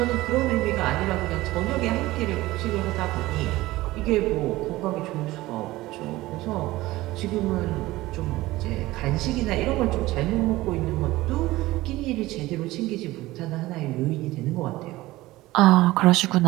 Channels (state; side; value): quieter; left; 18.1 dB